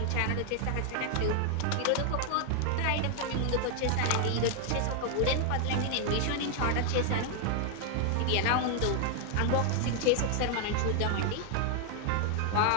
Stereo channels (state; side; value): different; both; correlation 0.00